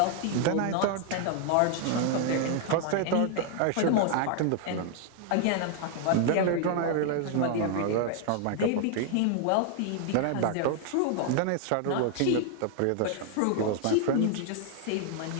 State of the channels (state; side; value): different; both; correlation 0.00